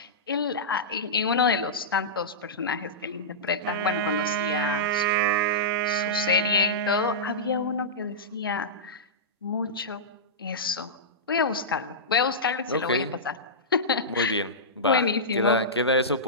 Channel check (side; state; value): both; normal; correlation -0.14